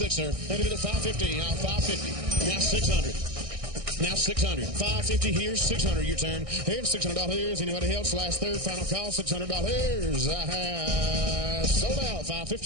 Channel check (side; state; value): left; late; 1.6 ms